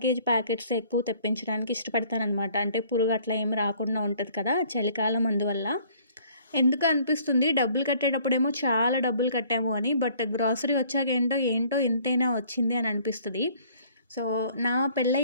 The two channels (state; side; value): inverted; both; correlation -0.57